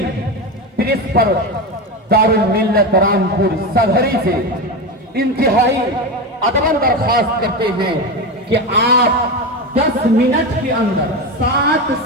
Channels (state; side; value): normal; both; correlation 0.18